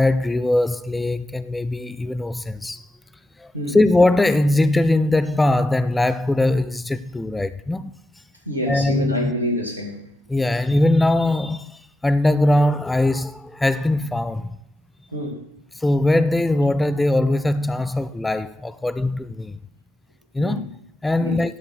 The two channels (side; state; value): both; normal; correlation 0.90